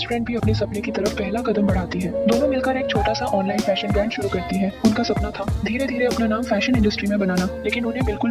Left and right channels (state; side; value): identical; both; correlation 1.00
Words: फ्रेंड भी अपने सपने की तरफ पहला कदम बढ़ाती है। दोनों मिलकर एक छोटा सा ऑनलाइन फैशन ब्रांड शुरू करती है। उनका सपना था धीरे धीरे अपना नाम फैशन इंडस्ट्री में बनाना, लेकिन उन्हें बिल्कुल